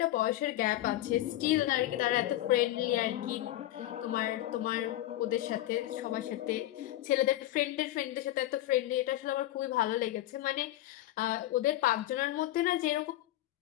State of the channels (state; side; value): quieter; right; 14.8 dB